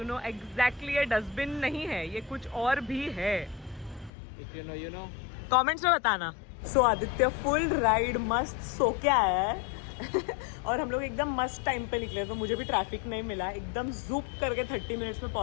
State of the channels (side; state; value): right; drops out; at 4.1 s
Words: know exactly ये डस्टबिन नहीं है, ये कुछ और भी है. इफ यू नो कमेंट्स में बताना. सो आदित्य फुल राइड मस्त सो के आया है और हम लोग एकदम मस्त टाइम पे निकले, तो मुझे भी ट्रैफिक नहीं मिला. एकदम जूप करके 30 मिनट्स में